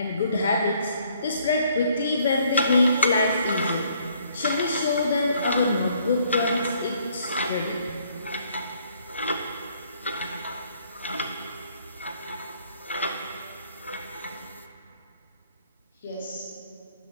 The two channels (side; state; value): both; inverted; correlation -0.64